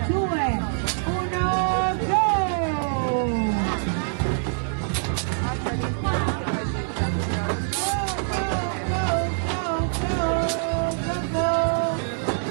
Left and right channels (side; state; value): left; silent; 62 dB below the other